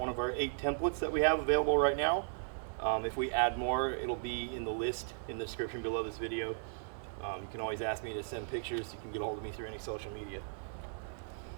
of our 8 templates that we have available right now. If we add more, it'll be in the list in the description below this video. You can always ask me to send pictures. You can get a hold of me through any social media.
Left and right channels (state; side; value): silent; left; digital silence